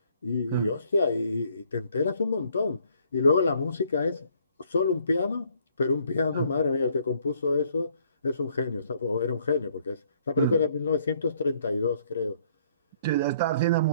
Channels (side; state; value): both; inverted; correlation -0.64